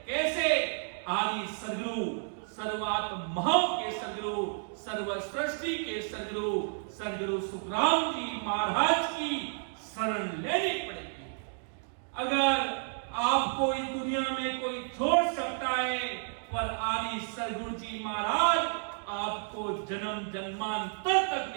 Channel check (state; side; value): silent; left; digital silence